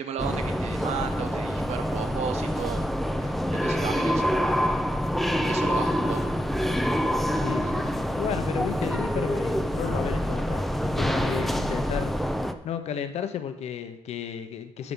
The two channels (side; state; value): both; normal; correlation 0.85